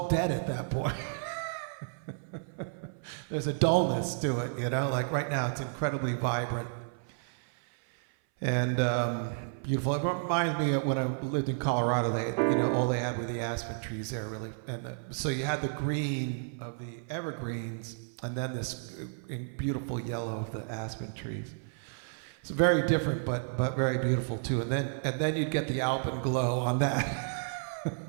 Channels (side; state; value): left; silent; 57 dB below the other